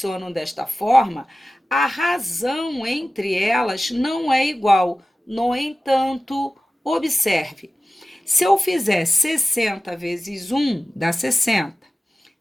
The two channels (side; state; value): both; normal; correlation 0.96